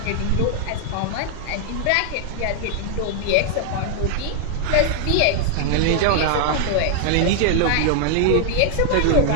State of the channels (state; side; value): different; both; correlation 0.00